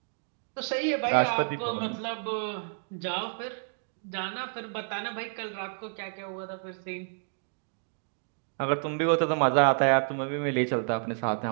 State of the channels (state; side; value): silent; left; digital silence